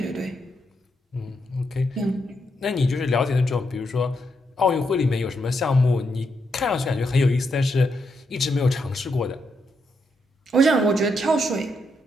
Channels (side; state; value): both; normal; correlation 0.81